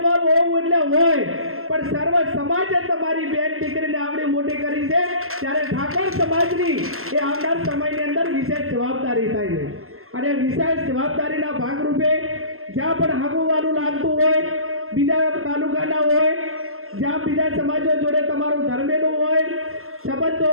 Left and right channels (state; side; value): late; left; 0.62 ms